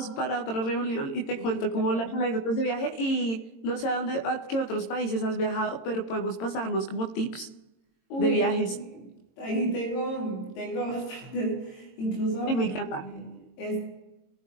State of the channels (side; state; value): right; late; 22 ms